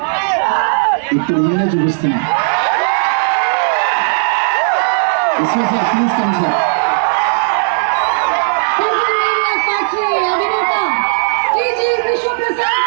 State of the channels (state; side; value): silent; left; digital silence